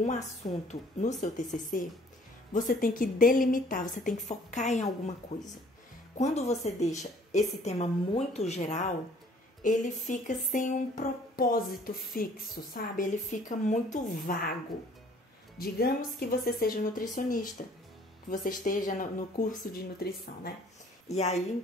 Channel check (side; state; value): both; normal; correlation 0.56